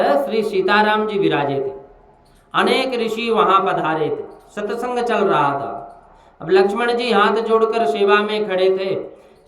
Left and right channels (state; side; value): identical; both; correlation 1.00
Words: श्री सीताराम जी विराजे थे, अनेक ऋषि वहां पधारे थे, सत्संग चल रहा था। अब लक्ष्मण जी हाथ जोड़कर सेवा में खड़े थे।